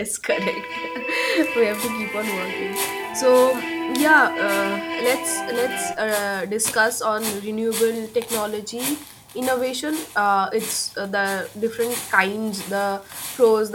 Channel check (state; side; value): identical; both; correlation 1.00